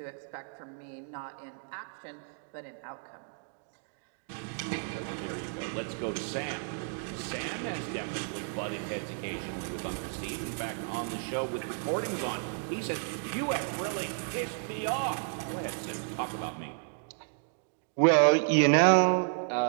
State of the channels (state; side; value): silent; left; 56 dB below the other